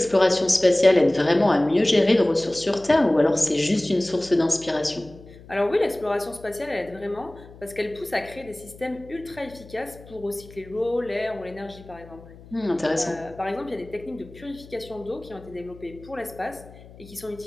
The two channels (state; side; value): noise; left; hum, 20 dB below the sound